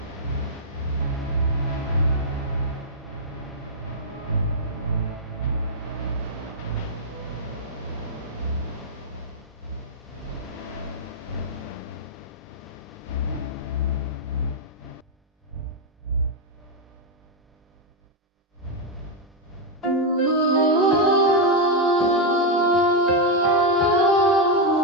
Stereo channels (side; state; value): both; normal; correlation 0.00